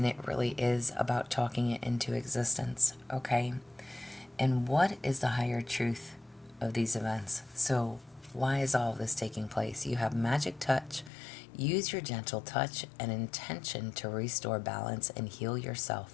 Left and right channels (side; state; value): right; drops out; at 11.1 s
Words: it really is about talking it into existence, okay? And what is the higher truth of these events? So why is all of this taking place? You have magic touch. Use your gentle touch and intention to restore balance and heal